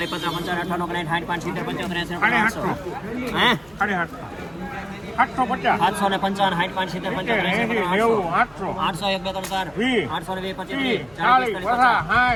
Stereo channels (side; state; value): right; noise; hum, 27 dB below the sound